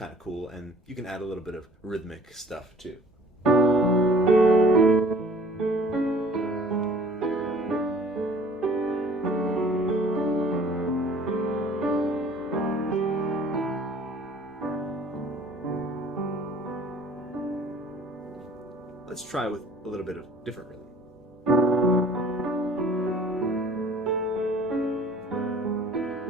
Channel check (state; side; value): normal; both; correlation 0.51